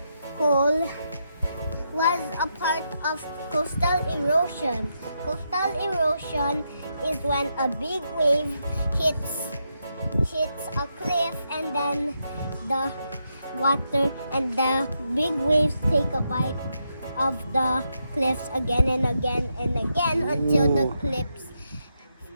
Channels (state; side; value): inverted; both; correlation -0.82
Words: hole was a part of coastal erosion. Coastal erosion is when a big wave hits a cliff and then the water and the big waves take a bite of the cliffs again and again and again until the